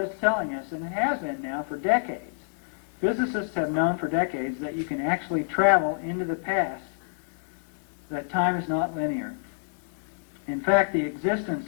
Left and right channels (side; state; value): right; silent; digital silence